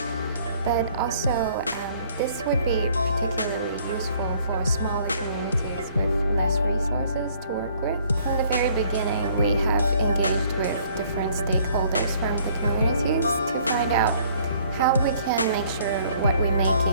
But also, this would be particularly useful for smaller communities with less resources to work with. From the very beginning, we have engaged with different stakeholders from the communities to find out how we can make sure what we're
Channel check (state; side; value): inverted; both; correlation -0.60